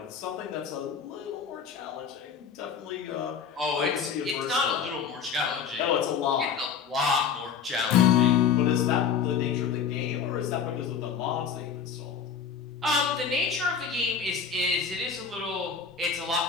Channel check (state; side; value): quieter; right; 6.7 dB